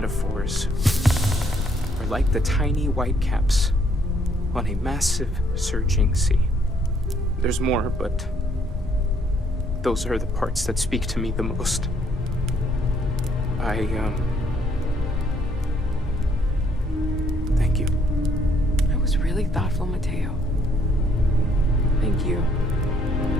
are like the tiny white caps on a massive surging sea. There's more, but those are the parts that speak to me the most. Thank you. That was really thoughtful, Mateo. Thank you.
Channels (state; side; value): normal; both; correlation 0.67